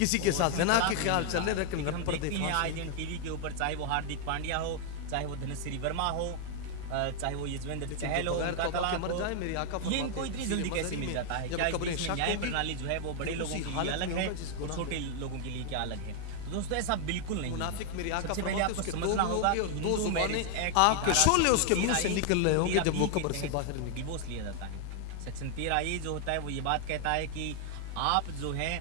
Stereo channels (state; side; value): different; both; correlation 0.00